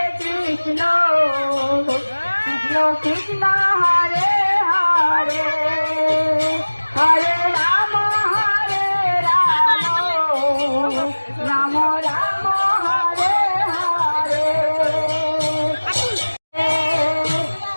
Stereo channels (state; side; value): inverted; both; correlation -1.00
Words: Krishna Krishna Krishna Hare Hare Hare Ram Ram Ram Hare Hare